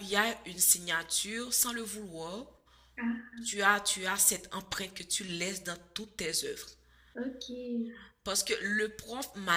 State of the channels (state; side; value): identical; both; correlation 1.00